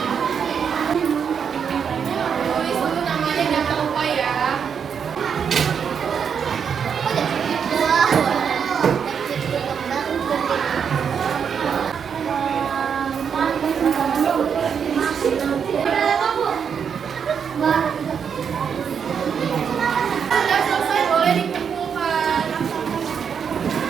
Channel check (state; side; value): quieter; left; 7.1 dB